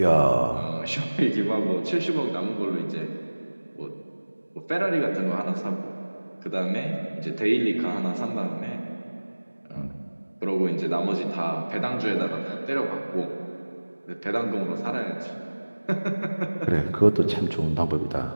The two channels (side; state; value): both; inverted; correlation -1.00